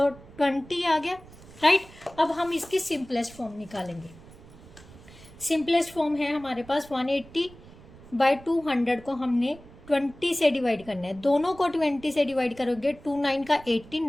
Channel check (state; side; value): noise; right; rumble, 21 dB below the sound